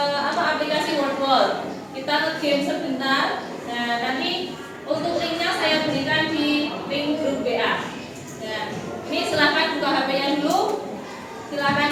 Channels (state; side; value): identical; both; correlation 1.00